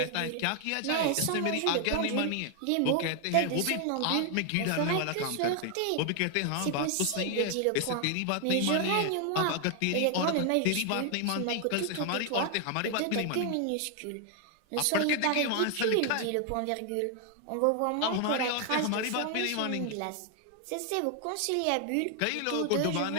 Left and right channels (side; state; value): both; different; correlation 0.00